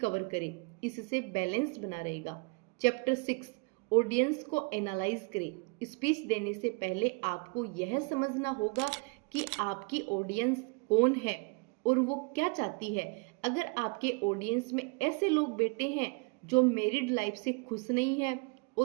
करें, इससे बैलेंस बना रहेगा। चैप्टर 6 ऑडियंस को एनालाइज करें। स्पीच देने से पहले आपको यह समझना होगा कि आपकी ऑडियंस कौन है और वो क्या चाहती है। अगर आपके ऑडियंस में ऐसे लोग बैठे हैं जो मैरिड लाइफ से खुश नहीं है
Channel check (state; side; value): quieter; left; 31.6 dB